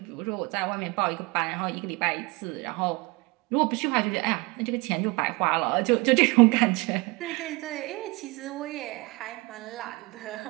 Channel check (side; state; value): left; quieter; 25.0 dB